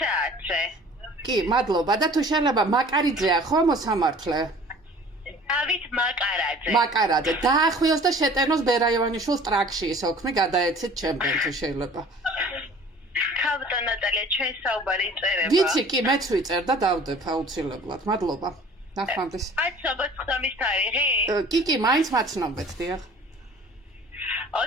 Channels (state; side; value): normal; both; correlation 0.48